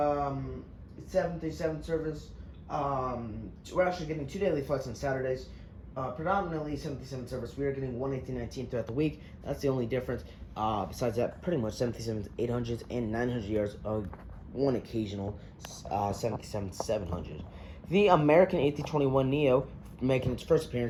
service. We're actually getting 2 daily flights on Saturdays. Predominantly 737 service. We are getting 1 A319 throughout the week. That's the only difference. Besides that, pretty much 737s, 800s, and 900ERs. One occasional 737-700. The American A321neo, making its first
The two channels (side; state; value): both; identical; correlation 1.00